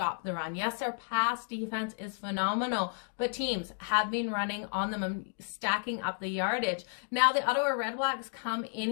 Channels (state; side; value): silent; right; 56 dB below the other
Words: the run. Yes, their pass defense is phenomenal, but teams have been running on them and stacking up the yardage. Now, the Ottawa Redblacks come in